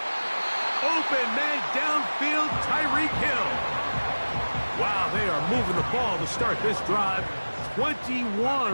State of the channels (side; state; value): both; inverted; correlation -1.00